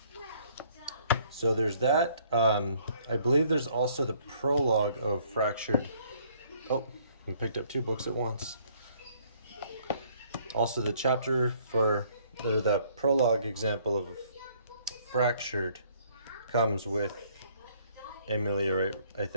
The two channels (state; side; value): inverted; both; correlation -0.62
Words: So there's that. I believe there's also the prologue of Fractured. Oh, I picked up two books at once. Also the chapter for, or the prologue example of Fractured comes with Ameliorite, I